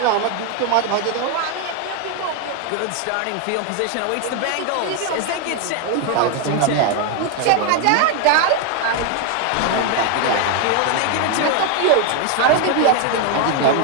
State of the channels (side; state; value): both; different; correlation 0.01